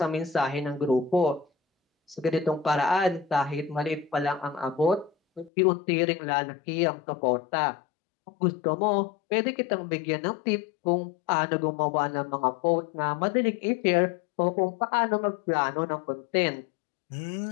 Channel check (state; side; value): drops out; right; at 5.5 s